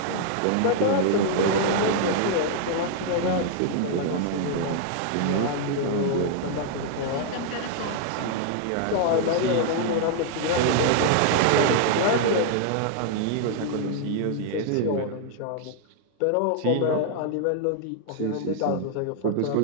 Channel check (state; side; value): different; both; correlation -0.01